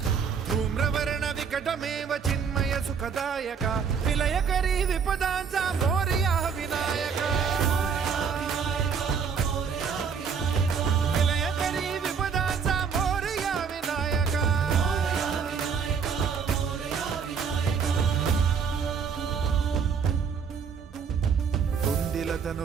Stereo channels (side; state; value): left; quieter; 6.4 dB